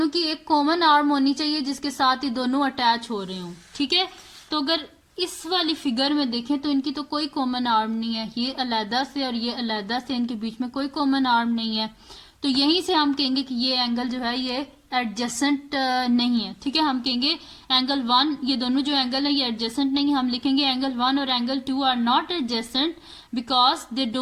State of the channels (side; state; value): both; identical; correlation 1.00